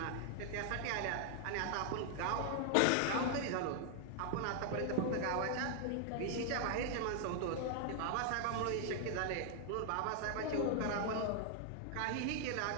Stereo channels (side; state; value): both; different; correlation 0.00